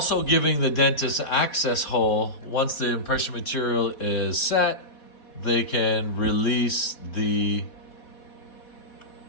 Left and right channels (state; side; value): late; right; 4.1 ms